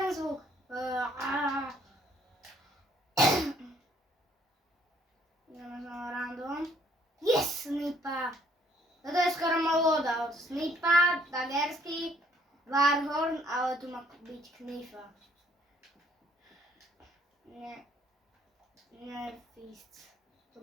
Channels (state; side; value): normal; both; correlation 0.63